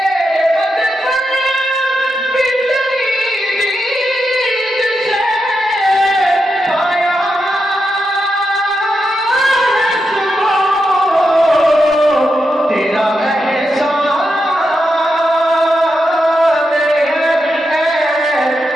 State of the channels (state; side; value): normal; both; correlation 0.86